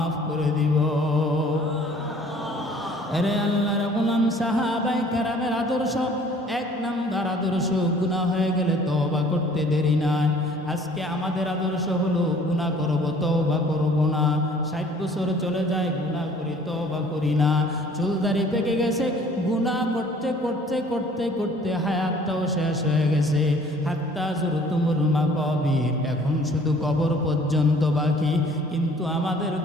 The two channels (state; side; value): normal; both; correlation 0.54